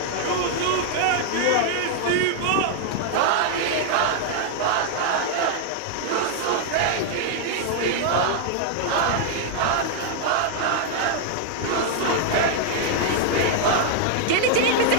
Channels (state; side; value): different; both; correlation 0.00